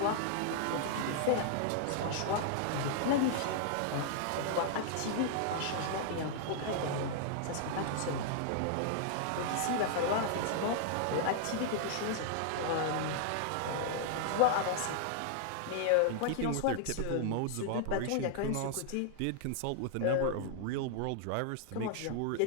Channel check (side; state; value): both; different; correlation -0.01